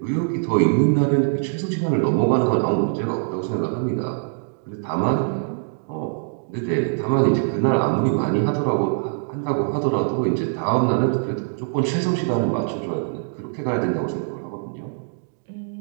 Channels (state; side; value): silent; left; 64 dB below the other